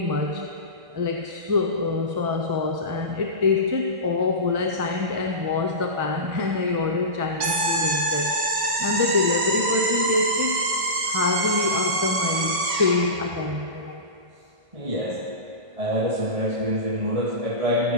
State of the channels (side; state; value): left; late; 1.5 ms